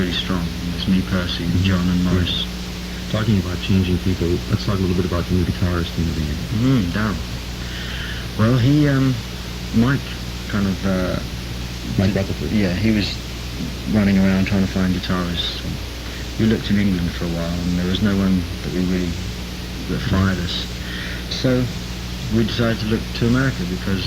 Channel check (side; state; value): both; identical; correlation 1.00